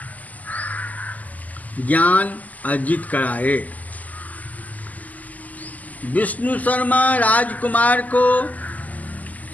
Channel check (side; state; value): right; late; 0.078 ms